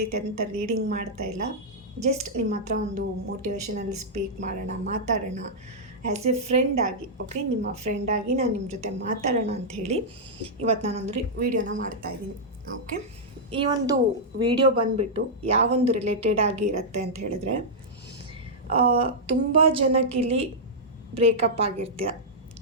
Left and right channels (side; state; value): both; normal; correlation -0.08